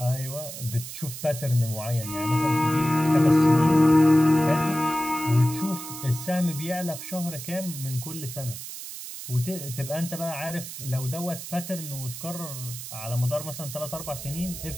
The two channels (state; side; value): noise; right; hiss, 10 dB below the sound